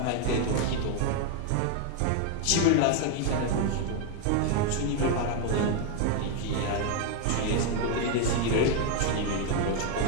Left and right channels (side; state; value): both; different; correlation 0.01